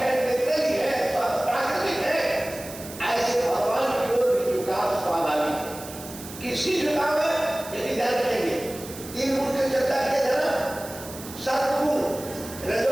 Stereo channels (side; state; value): right; noise; hiss, 14 dB below the sound